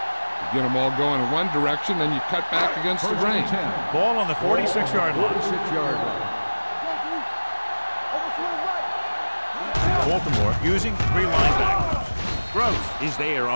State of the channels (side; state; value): both; inverted; correlation -1.00